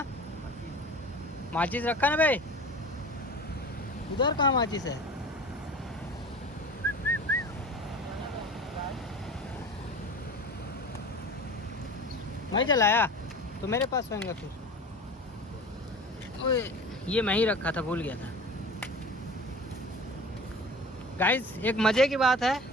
माचिस रखा ना भाई, उधर कहाँ माचिस है? मैं जलाया तो मेरे पास होगा फिर। ओए ये मैं ही रखा था, भूल गया था। गाइस एक मज़े की बात है,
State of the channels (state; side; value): normal; both; correlation 0.37